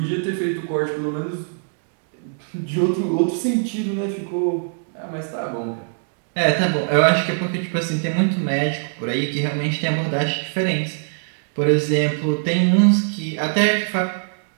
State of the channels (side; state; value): left; silent; digital silence